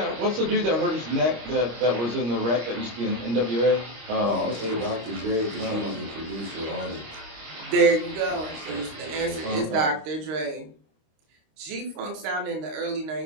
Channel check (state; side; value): late; left; 25 ms